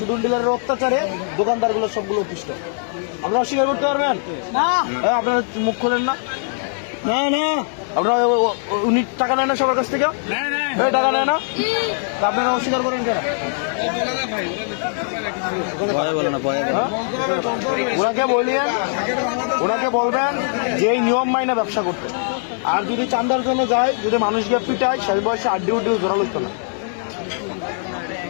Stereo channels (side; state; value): right; silent; 64 dB below the other